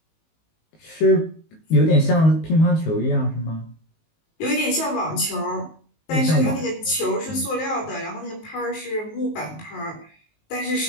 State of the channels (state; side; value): late; right; 19 ms